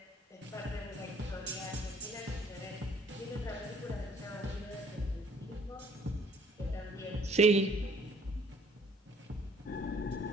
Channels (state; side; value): normal; both; correlation 0.60